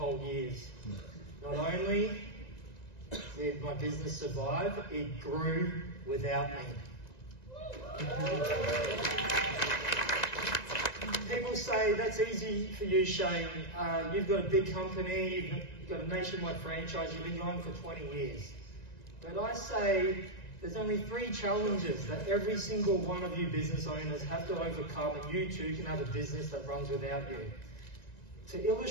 years. Not only did my business survive, it grew without me. People say, that's easy for you, Shane. You've got a big company, you've got a nationwide franchise, you've been going for 20 years. But I say, there's only 3 challenges that every single one of you business owners have to overcome, and you too can have a business that runs without you. To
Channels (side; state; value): right; late; 1.9 ms